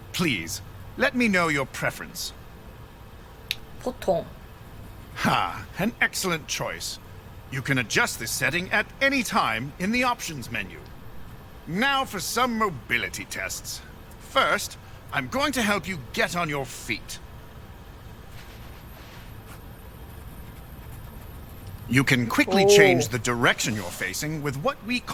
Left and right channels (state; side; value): identical; both; correlation 1.00